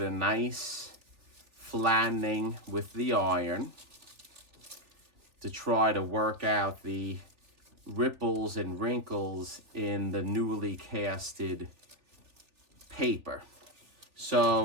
a nice flattening with the iron to try to work out the ripples and wrinkles in the newly casted paper.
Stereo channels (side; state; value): left; late; 3.4 ms